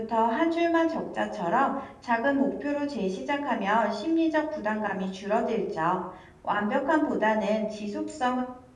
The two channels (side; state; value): both; identical; correlation 1.00